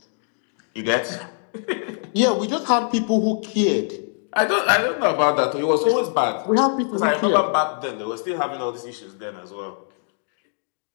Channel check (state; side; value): silent; right; 58 dB below the other